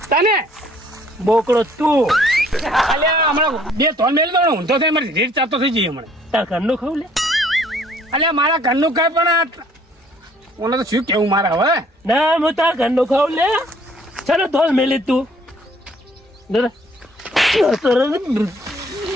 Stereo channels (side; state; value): both; normal; correlation 0.60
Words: તને બોકડો તું. અલ્યા હમણાં બે ત્રણ મેલ દો ઊંધો થઈ મારી રીત ચાલતો થઈ જઈએ હમણાં. તાર ઘરનું ખાવ લે. અલ્યા મારા ઘરનું કઈ પણ ઓને તો શું કેવું મારા હવે. ના હું તાર ઘરનું ખાવ લે. ચાલો ધોલ મેલી તું.